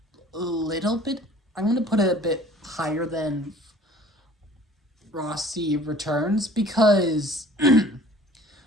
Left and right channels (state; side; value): normal; both; correlation 0.49